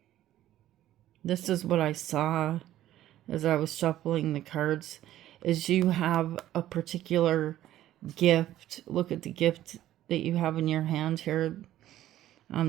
This is what I saw as I was shuffling the cards, is you have a particular gift. Look at the gift that you have in your hand here.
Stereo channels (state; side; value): quieter; left; 13.4 dB